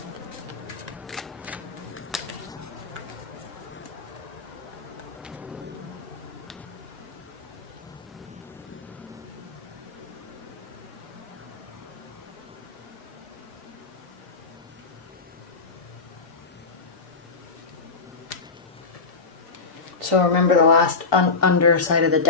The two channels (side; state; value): right; quieter; 4.3 dB